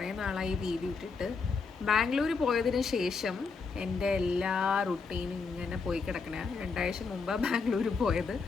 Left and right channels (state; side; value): quieter; right; 4.8 dB